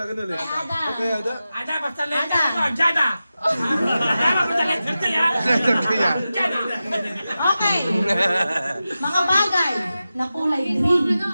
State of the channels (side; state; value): both; inverted; correlation -0.93